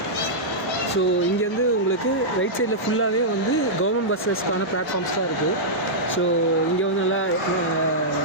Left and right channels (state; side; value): normal; both; correlation -0.11